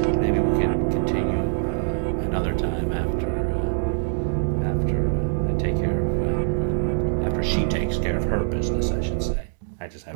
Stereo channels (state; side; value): silent; left; digital silence